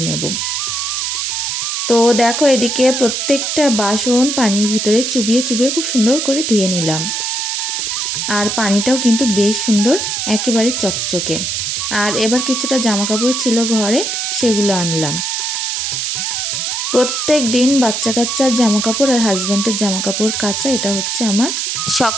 নেব। তো দেখো, এদিকে প্রত্যেকটা বাসন পানির ভিতরে চুবিয়ে চুবিয়ে খুব সুন্দর করে ধুয়ে নিলাম, আর পানিটাও কিন্তু বেশ সুন্দর, একেবারে চকচকে। আর এবার কিছুটা জামা কাপড় ছিল ঘরে, সেগুলো আনলাম। প্রত্যেক দিন বাচ্চা কাচ্চার জামা কাপড় আর হাজব্যান্ডের জামা কাপড় কাচা, এটা হচ্ছে আমার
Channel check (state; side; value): noise; right; hiss, 1 dB below the sound